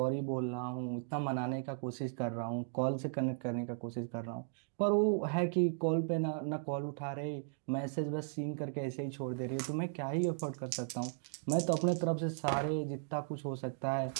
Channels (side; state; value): left; silent; digital silence